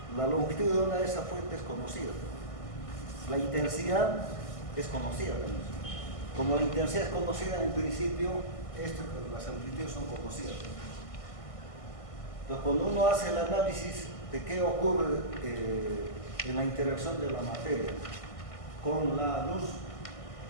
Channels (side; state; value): right; late; 1.5 ms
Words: la longitud de onda de esa fuente es conocida, la intensidad es conocida también. Como la intensidad es conocida, en principio las amplitudes son conocidas. Entonces, cuando uno hace el análisis de qué ocurre en la interacción de la materia con la luz.